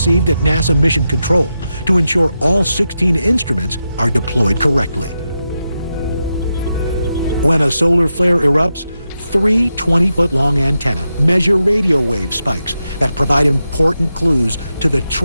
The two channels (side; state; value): both; inverted; correlation -0.88